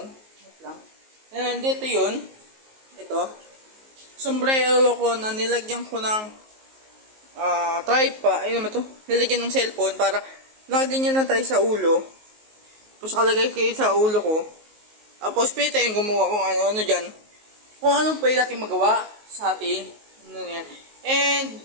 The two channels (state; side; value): late; left; 19 ms